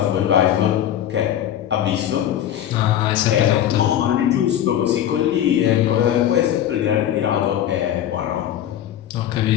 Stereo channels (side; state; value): right; quieter; 11.0 dB